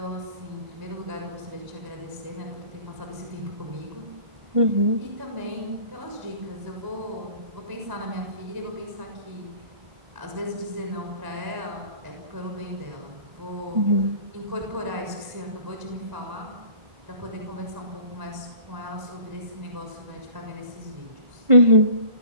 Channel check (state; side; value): late; left; 1.0 ms